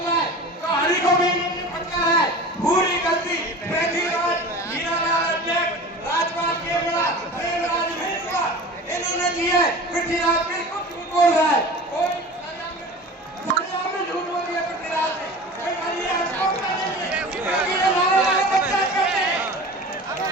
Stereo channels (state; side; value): normal; both; correlation 0.36